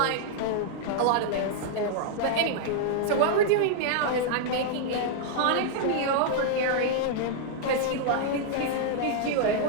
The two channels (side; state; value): both; different; correlation -0.01